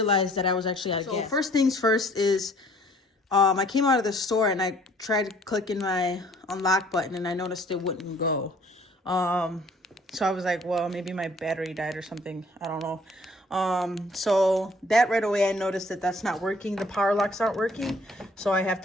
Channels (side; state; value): both; normal; correlation 0.57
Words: that I was actually out of gas. So first things first is I came out of the store and I tried clicking my unlock button and I noticed it wouldn't go. So I was like, well, maybe my battery died or something. I don't know. So that right away, I noticed that that's not working. The power locks aren't working. So I have